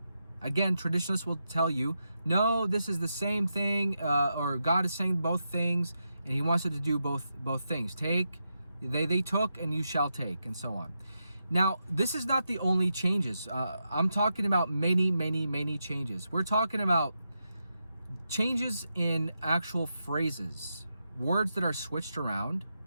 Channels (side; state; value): both; inverted; correlation -0.86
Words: Again, traditionalists will tell you, no, this is the same thing, or God is saying both things, and He wants you to do both things. Take, they took, and you shall take, and so on. Now, this is not the only changes. I'm talking about many changes. We're talking about changes in actual phrases, words that are switched around,